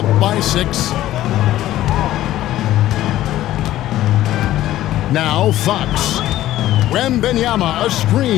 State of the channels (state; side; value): quieter; right; 14.1 dB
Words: by 6. Now Fox. Wembanyama, a